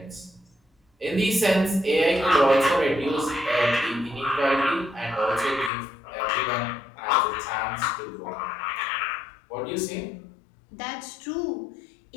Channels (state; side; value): drops out; right; at 5.7 s